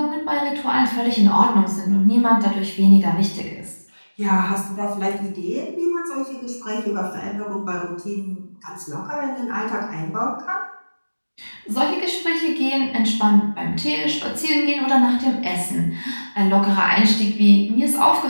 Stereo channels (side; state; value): both; inverted; correlation -1.00